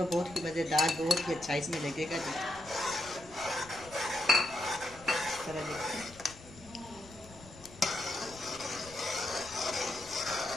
बहुत ही मज़ेदार, बहुत ही अच्छा इसमें लगेगा। तरह देखते हैं।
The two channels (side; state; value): left; noise; rumble, 19 dB below the sound